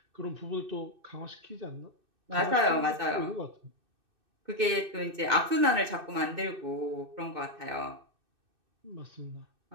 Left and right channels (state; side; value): late; left; 2.6 ms